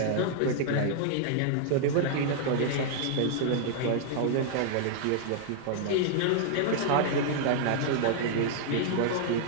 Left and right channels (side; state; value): both; different; correlation 0.00